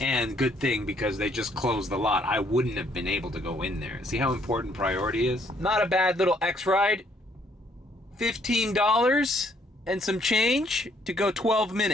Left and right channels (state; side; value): normal; both; correlation 0.67